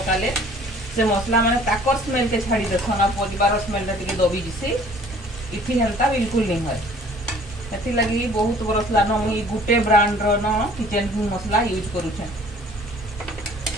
से मसला माने ताकर स्मेल के छाड़ी देसन आ परिवार स्मेल टिके दबी जिसी इथि हेंता बिल्कुल नहीं है एथि लगी बहुत बरस ला न मुई गुटे ब्रांड रो न किचन किंग मसला यूज करू छे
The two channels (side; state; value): both; normal; correlation 0.53